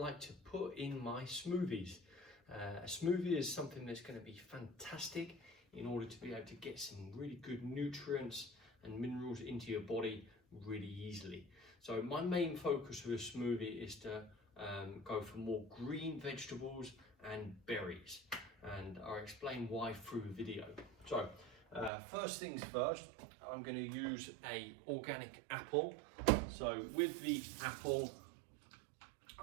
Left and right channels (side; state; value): left; drops out; at 21.9 s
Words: to put in my smoothies. A smoothie is something that's going to be fantastic in order to be able to get some really good nutrients and minerals into your body really easily. So my main focus with a smoothie is to go for more green vegetables and berries, and I'll explain why through the video. So first things first, I'm going to use a organic apple. So with the apple,